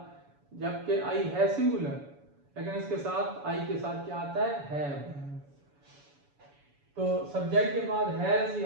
जबकि आई है सिंगुलर, लेकिन इसके साथ आई के साथ क्या आता है, हैव। तो सब्जेक्ट के बाद हैज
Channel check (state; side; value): late; left; 7.0 ms